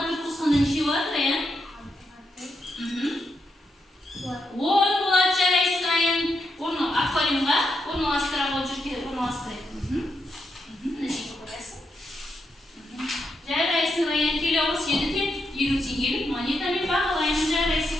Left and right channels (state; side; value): normal; both; correlation 0.82